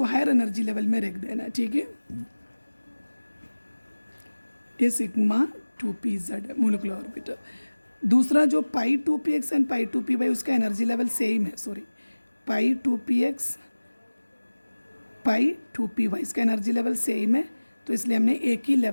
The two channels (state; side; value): inverted; both; correlation -1.00